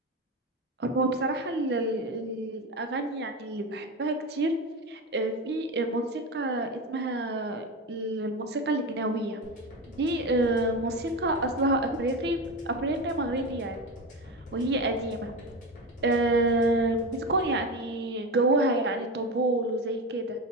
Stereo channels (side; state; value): both; normal; correlation 0.21